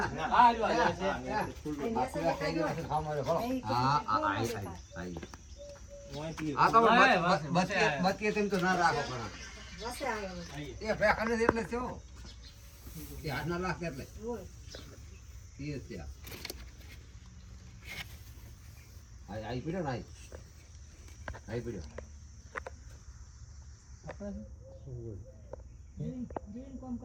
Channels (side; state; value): both; identical; correlation 1.00